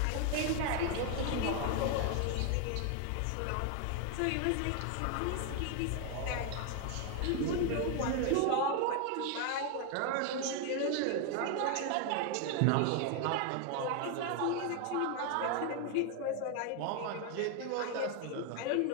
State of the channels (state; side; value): different; both; correlation 0.01